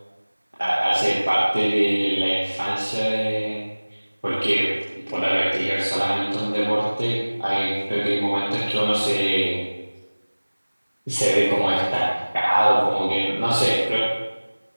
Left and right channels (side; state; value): both; inverted; correlation -1.00